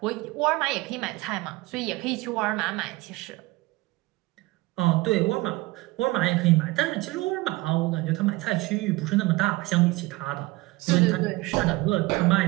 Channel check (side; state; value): left; quieter; 21.0 dB